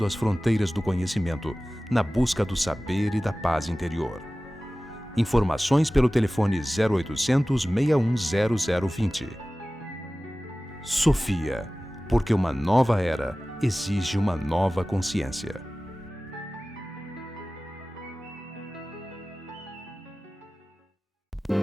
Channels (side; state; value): both; normal; correlation 0.97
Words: as fronteiras do conhecimento, na busca do saber e da paz interior. Informações pelo telefone 0800 6100 0020. Sofia, porque uma nova era exige uma nova consciência.